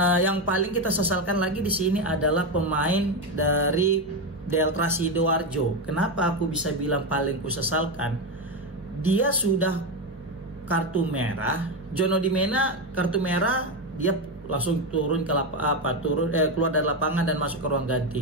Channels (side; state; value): both; normal; correlation 0.12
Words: yang paling kita sesalkan lagi di sini adalah pemain dari Delta Sidoarjo. Kenapa aku bisa bilang paling kusesalkan? Dia sudah kartu merah, John Odimena kartu merah, dia langsung turun ke keluar dari lapangan dan masuk ke ruang